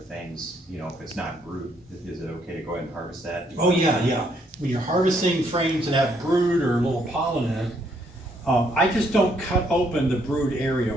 if it's not brood, is it okay to go ahead and harvest that? Oh yeah. When you're harvesting frames that have brood or a little pollen in it, I just don't cut open the brood area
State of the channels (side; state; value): both; normal; correlation 0.71